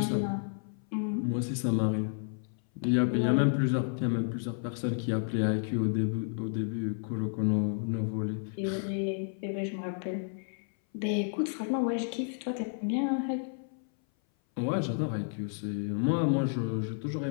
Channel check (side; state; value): right; silent; 57 dB below the other